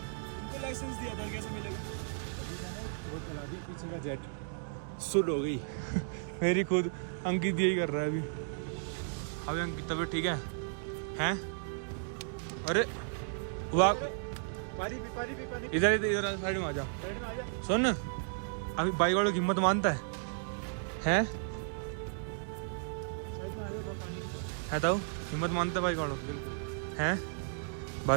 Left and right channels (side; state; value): left; silent; digital silence